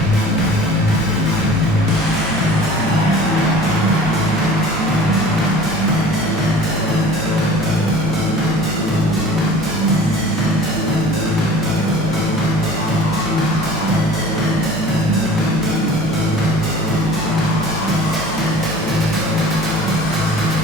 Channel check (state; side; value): normal; both; correlation 0.44